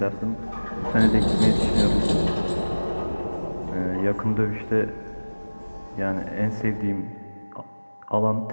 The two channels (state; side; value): inverted; both; correlation -1.00